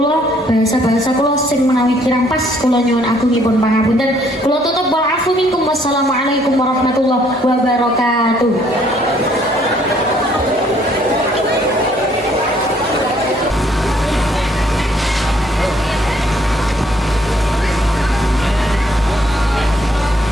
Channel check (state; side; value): normal; both; correlation 0.65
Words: bahasa-bahasa kula sing menawi kirang pas kula nyuwun agungipun pangapunten. Kula tutup wal afu minkum. Wassalamualaikum warahmatullahi wabarakatuh.